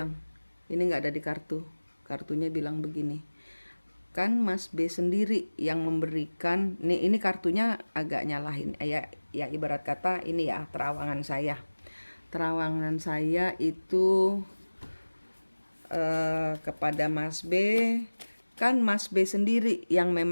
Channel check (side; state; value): both; inverted; correlation -1.00